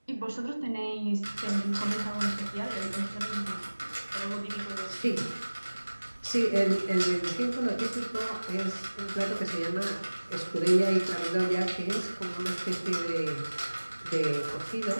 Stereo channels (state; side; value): inverted; both; correlation -1.00